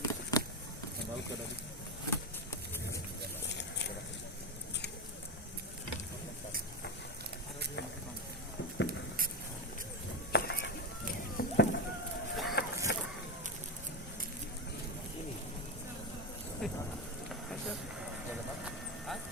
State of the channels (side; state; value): both; normal; correlation 0.12